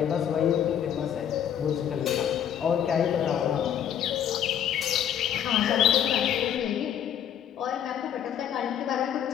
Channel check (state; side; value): quieter; right; 9.6 dB